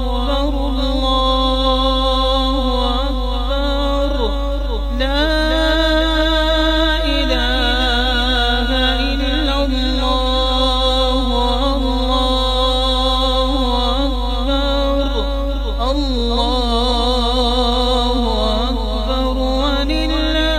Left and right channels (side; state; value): both; identical; correlation 1.00